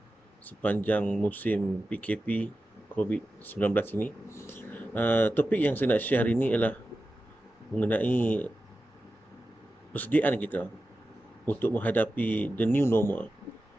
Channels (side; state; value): both; normal; correlation 0.93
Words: sepanjang musim PKP COVID-19 ini. Topik yang saya nak share hari ini ialah mengenai persediaan kita untuk menghadapi the new normal.